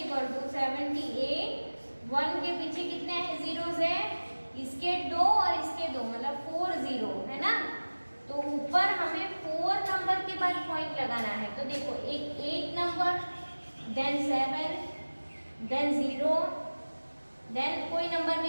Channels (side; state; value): both; inverted; correlation -1.00